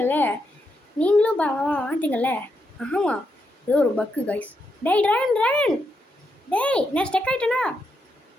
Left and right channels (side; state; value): both; normal; correlation 0.82